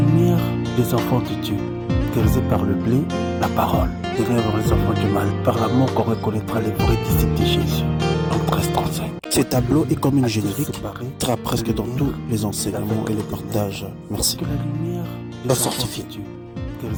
des enfants de Dieu caractérisé par le blé, la parole. Ténèbres les enfants du mal, par l'amour qu'on reconnaîtra les vrais disciples de Jésus. En 1335. Ce tableau est comme une générique, séparé, sera presque dans tous les enseignements et les partages. Merci. Que la lumière La sortie.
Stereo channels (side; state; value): both; identical; correlation 1.00